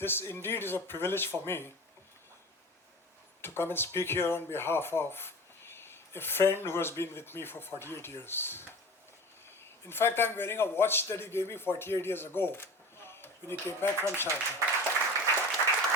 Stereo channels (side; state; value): both; normal; correlation 0.35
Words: indeed is a privilege for me to come and speak here on behalf of a friend who has been with me for 48 years. In fact, I'm wearing a watch that he gave me 48 years ago when he came back from Sharjah.